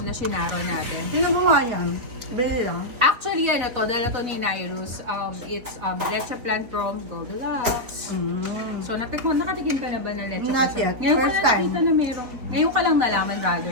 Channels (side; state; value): left; late; 4.1 ms